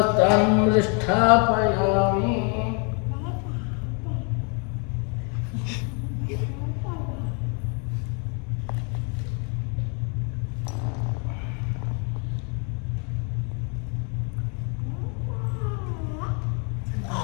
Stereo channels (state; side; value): quieter; right; 36.8 dB